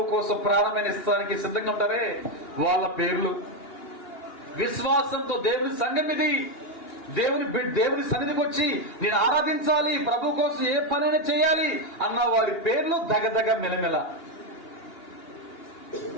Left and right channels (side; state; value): right; late; 2.8 ms